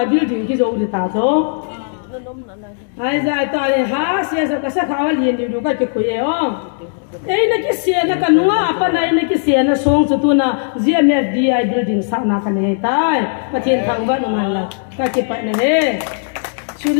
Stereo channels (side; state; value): right; silent; digital silence